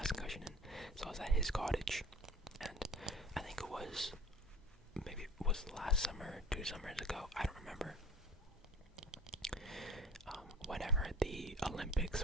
concussion in. So I was at his cottage, and I think it was last summer, 2 summers ago. I don't remember. Whenever the Olympics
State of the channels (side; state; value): both; normal; correlation 0.42